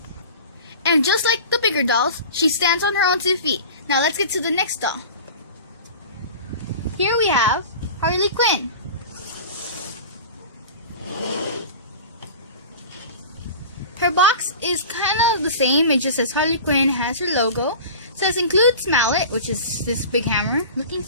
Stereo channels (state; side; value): inverted; both; correlation -0.36